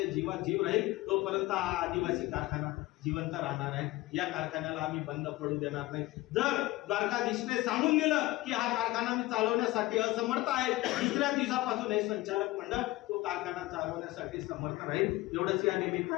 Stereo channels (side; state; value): right; quieter; 19.0 dB